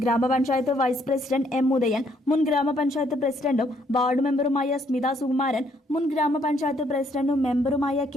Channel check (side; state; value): both; normal; correlation 0.69